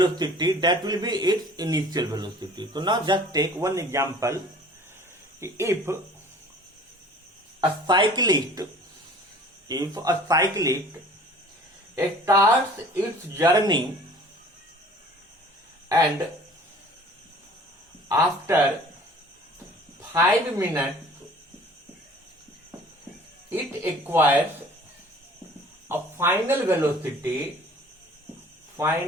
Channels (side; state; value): both; normal; correlation 0.48